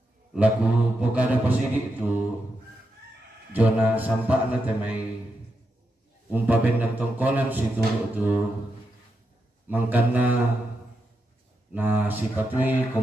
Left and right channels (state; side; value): normal; both; correlation 0.85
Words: laku pokada pasidi itu jona sampak na te mai bendan tongkonan si turu tu mangkana na si patui